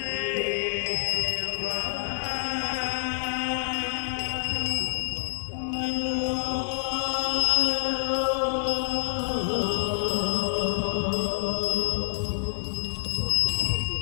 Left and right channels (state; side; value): silent; right; digital silence